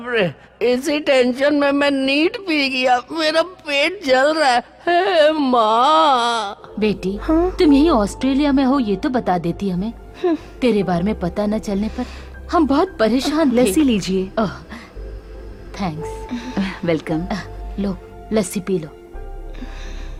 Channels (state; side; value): identical; both; correlation 1.00